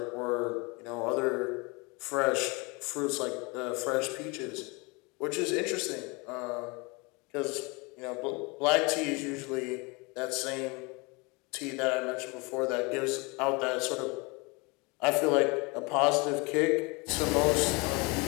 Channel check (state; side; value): quieter; right; 28.0 dB